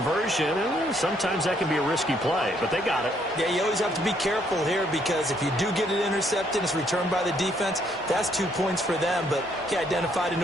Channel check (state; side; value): normal; both; correlation 0.69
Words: And sometimes that can be a risky play, but they got it. Yeah, you always have to be careful here because if you do get it intercepted, it's returned by the defense. That's 2 points for them, but he identified an